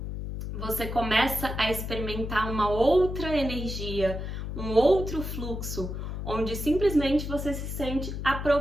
você começa a experimentar uma outra energia, um outro fluxo, onde simplesmente você se sente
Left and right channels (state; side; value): noise; left; hum, 5 dB below the sound